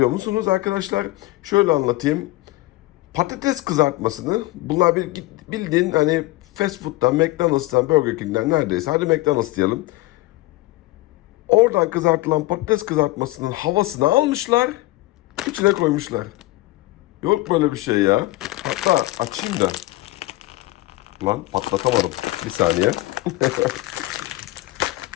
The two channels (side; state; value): right; quieter; 19.0 dB